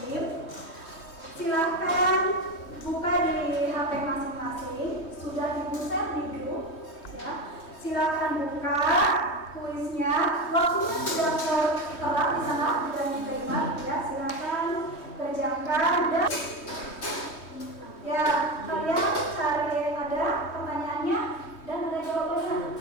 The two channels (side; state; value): right; late; 3.2 ms